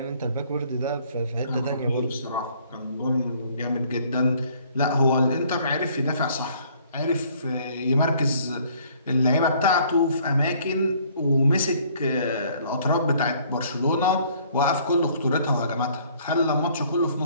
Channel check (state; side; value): inverted; both; correlation -0.59